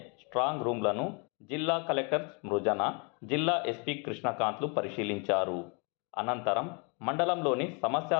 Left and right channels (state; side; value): quieter; right; 34.2 dB